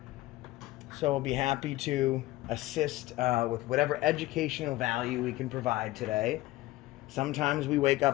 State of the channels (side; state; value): right; quieter; 17.7 dB